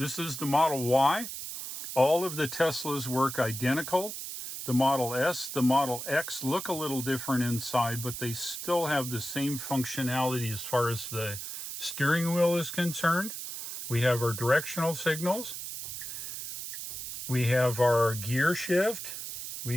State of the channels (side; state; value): right; noise; hiss, 7 dB below the sound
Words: is the Model Y. All of the Teslas work identical. The Model S, the Model X look a little different inside, but they still have the same functionality as far as the steering wheel is concerned. We have our directional signals. We have our gear shift.